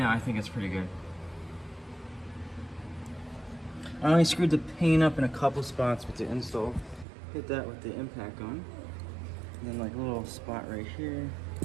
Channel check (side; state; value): left; drops out; at 7.1 s